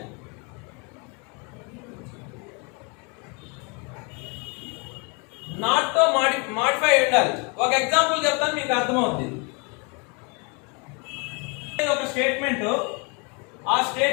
Not తో మాడిఫై ఉండాలి. ఒక ఎగ్జాంపుల్ చెప్తాను, మీకు అర్థమవుతుంది. ఒక స్టేట్మెంట్, ఆ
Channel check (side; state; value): right; quieter; 32.7 dB